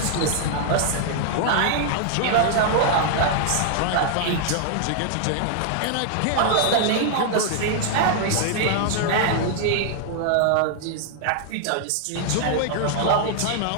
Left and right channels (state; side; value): different; both; correlation 0.00